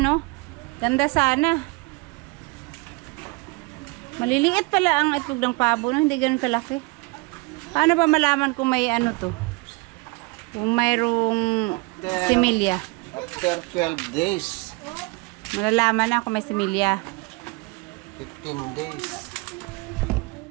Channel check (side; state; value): left; quieter; 26.0 dB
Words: Ganda sana. Maliliit pala ang itlog ng pabo, no? Hindi ganun kalaki. Paano ba malaman kung may ano to? Kung mayroong similya. After 12 days, Malalaman na kung may similya. 15 days.